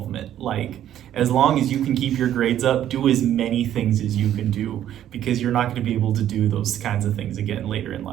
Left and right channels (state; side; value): quieter; left; 11.3 dB